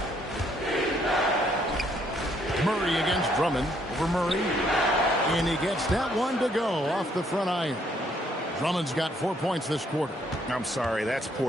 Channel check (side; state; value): both; normal; correlation 0.68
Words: Murray against Drummond. Over Murray. And he gets that one to go off the front iron. Drummond's got 4 points this quarter. I'm sorry, that's